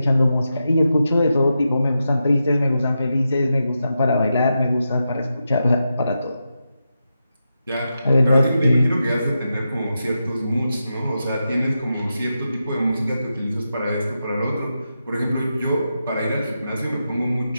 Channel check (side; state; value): both; inverted; correlation -0.88